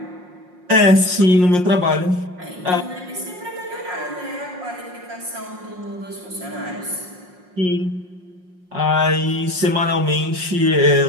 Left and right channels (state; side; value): late; left; 5.6 ms